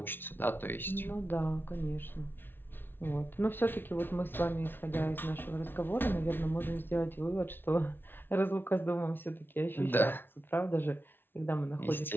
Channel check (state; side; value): late; right; 0.10 ms